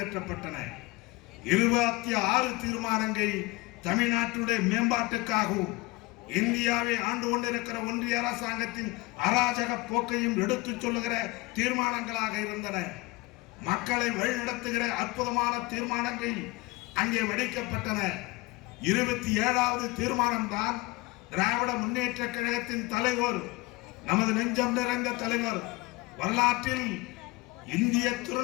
26 தீர்மானங்கள் தமிழ்நாட்டுடைய மேம்பாட்டுக்காகவும் இந்தியாவை ஆண்டு கொண்டிருக்கிற ஒன்றிய அரசாங்கத்தின் அராஜக போக்கையும் எடுத்துச் சொல்லுகிற தீர்மானங்களாக இருந்தன. மக்களை வழிநடத்துகிற அற்புதமான தீர்மானங்கள் அங்கே வடிக்கப்பட்டன. 27வது தீர்மானம் தான் திராவிட முன்னேற்ற கழகத்தின் தலைவர், நமது நெஞ்சம் நிறைந்த தலைவர், வரலாற்றில் இந்திய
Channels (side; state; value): right; quieter; 21.5 dB